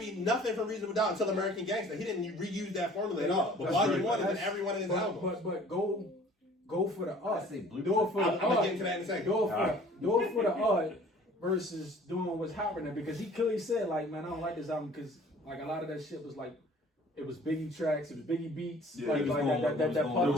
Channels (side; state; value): both; normal; correlation 0.51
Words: nothing from Reasonable Doubt until American Gangster. He didn't reuse that formula at all. But That's Volume very 1 is in That's- every one of his albums. But go for the art. say Do it Blueprint. for the I'm gonna art. get into that in a second. Do it for the art versus doing what's happening, because he clearly said like, man, I don't like this album because like a lot of that shit was like, it was Biggie tracks, it was Biggie beats, Yeah, like it was that going- part it